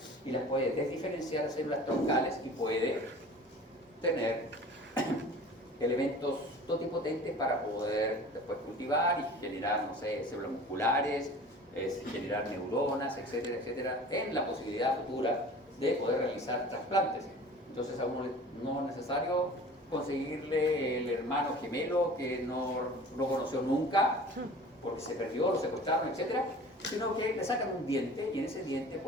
y las puede desdiferenciar a células troncales y puede tener elementos totipotentes para poder después cultivar y generar, no sé, células musculares, generar neuronas, etcétera, etcétera, en la posibilidad futura de poder realizar trasplantes. Entonces a uno no es necesario conseguirle el hermano gemelo que no conoció nunca porque se perdió, lo secuestraron, etcétera, sino que le sacan un diente y en ese diente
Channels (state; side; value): normal; both; correlation 0.42